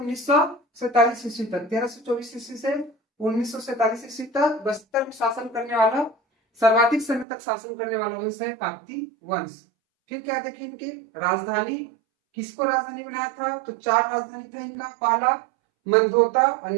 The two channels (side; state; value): left; drops out; at 7.2 s